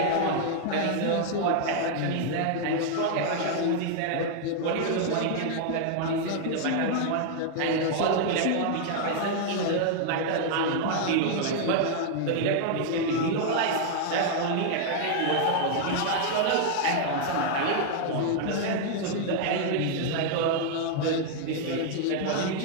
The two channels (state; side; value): different; both; correlation 0.00